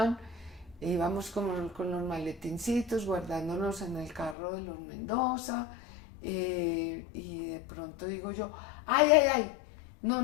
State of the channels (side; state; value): right; drops out; at 4.4 s